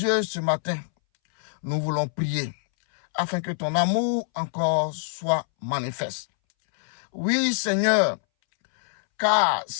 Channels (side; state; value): right; silent; 61 dB below the other